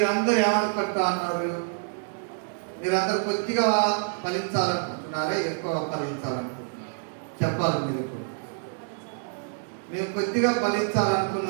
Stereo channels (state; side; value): silent; left; digital silence